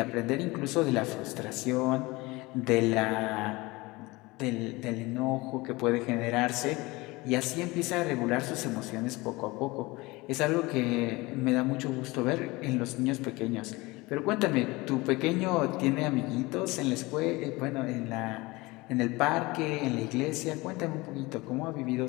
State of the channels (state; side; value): quieter; right; 22.4 dB